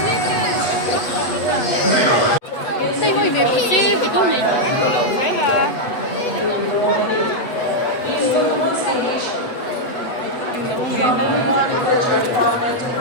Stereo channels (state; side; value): late; right; 8.2 ms